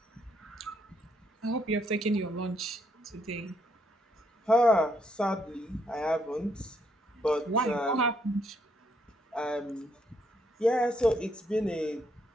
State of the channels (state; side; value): normal; both; correlation 0.74